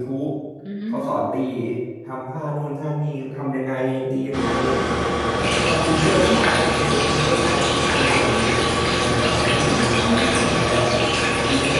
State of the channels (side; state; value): both; identical; correlation 1.00